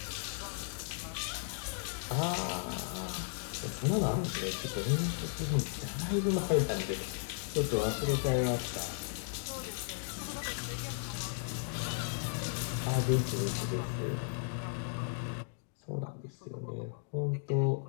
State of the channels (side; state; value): right; silent; digital silence